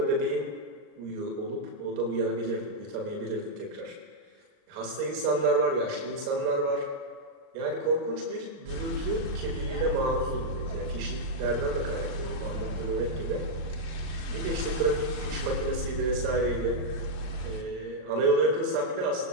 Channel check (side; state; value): left; late; 39 ms